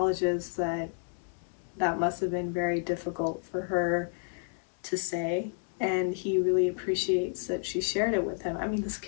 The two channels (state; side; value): silent; right; digital silence